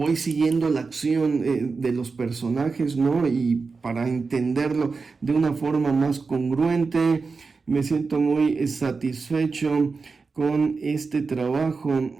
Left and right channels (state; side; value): quieter; left; 4.5 dB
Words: siguiendo la acción de los personajes, ¿no? Y para entenderlo de una forma más congruente, me siento muy satisfecho con este trabajo